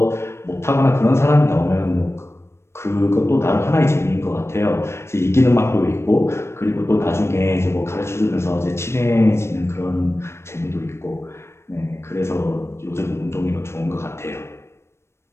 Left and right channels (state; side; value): late; right; 0.13 ms